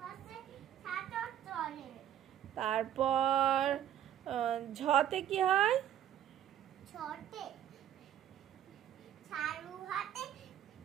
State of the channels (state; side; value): quieter; left; 10.7 dB